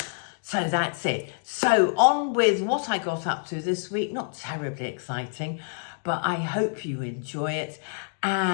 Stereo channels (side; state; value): right; silent; digital silence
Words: So that's it. So on with what I got up to this week. Not terribly exciting, but I hope you enjoy it.